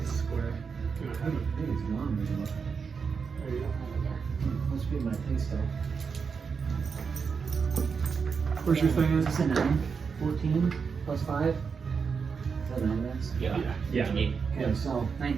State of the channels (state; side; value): quieter; left; 5.7 dB